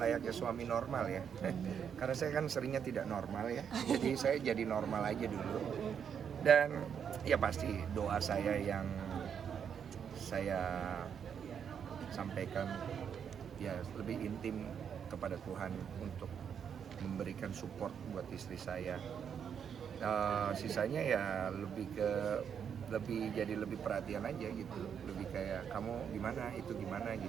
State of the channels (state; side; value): quieter; left; 7.7 dB